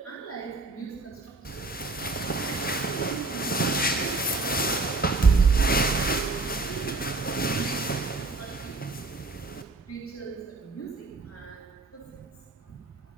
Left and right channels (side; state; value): left; quieter; 3.4 dB